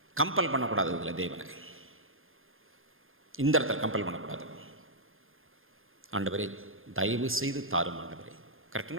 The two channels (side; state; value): left; late; 0.60 ms